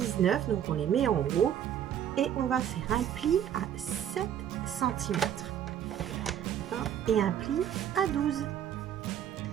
donc on les met en haut et on va faire un pli à 7 cm et un pli à 12.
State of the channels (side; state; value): left; quieter; 9.8 dB